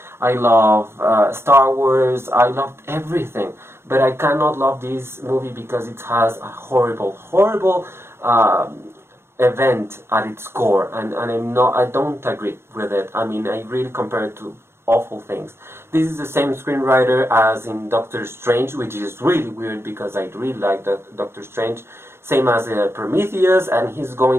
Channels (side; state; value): left; late; 0.12 ms